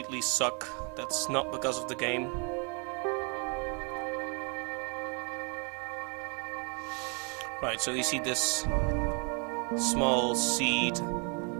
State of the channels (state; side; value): quieter; left; 36.4 dB